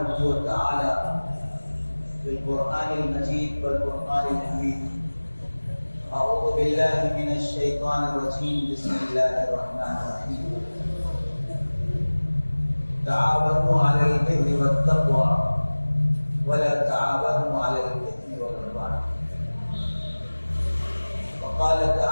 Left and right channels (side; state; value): both; inverted; correlation -1.00